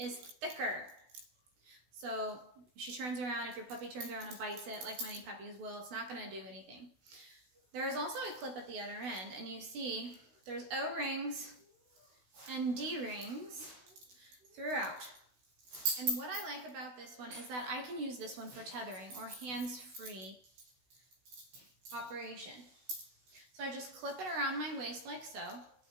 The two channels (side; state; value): left; late; 16 ms